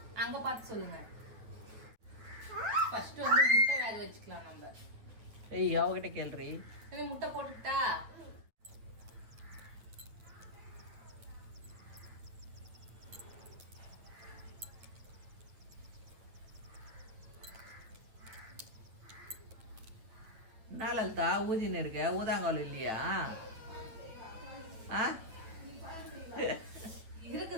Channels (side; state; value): left; late; 9.1 ms